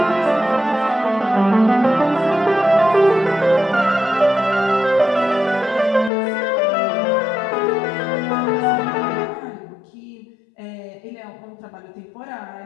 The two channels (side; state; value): right; drops out; at 6.1 s